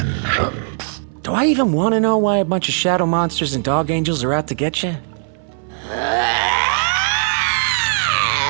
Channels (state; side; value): silent; left; 62 dB below the other